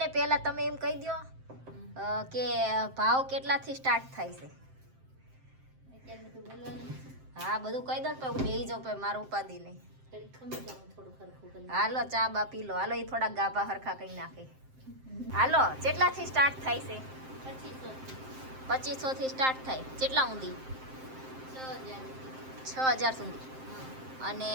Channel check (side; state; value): left; late; 7.6 ms